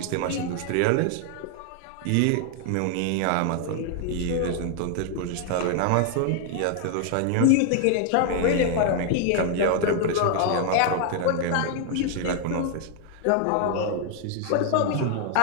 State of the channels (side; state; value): both; different; correlation 0.00